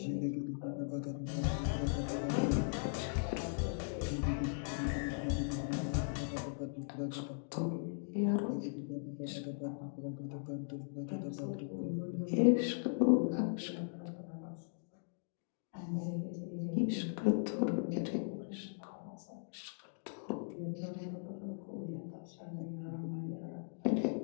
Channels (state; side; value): silent; right; digital silence